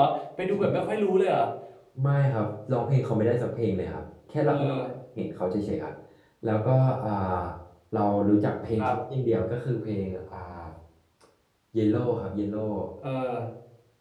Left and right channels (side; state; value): both; identical; correlation 1.00